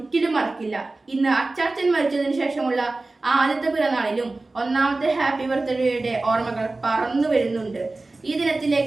മറക്കില്ല. ഇന്ന് അച്ചാച്ചൻ മരിച്ചതിനു ശേഷമുള്ള ആദ്യത്തെ പിറന്നാളിലും 1ാമത്തെ ഹാപ്പി ബർത്ത്ഡേയുടെ ഓർമ്മകൾ പറന്നു വരുന്നുണ്ട്. ഈ ദിനത്തിലെ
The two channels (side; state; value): left; quieter; 3.2 dB